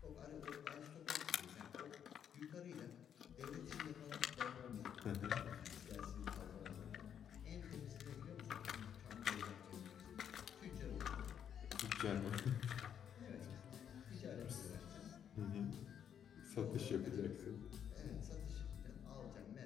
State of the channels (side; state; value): right; quieter; 8.7 dB